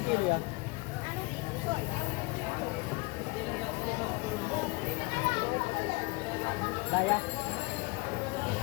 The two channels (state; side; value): quieter; right; 26.2 dB